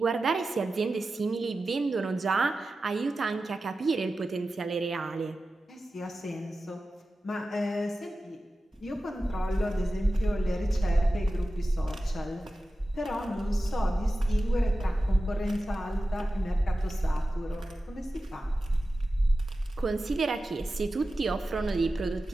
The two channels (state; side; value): normal; both; correlation 0.94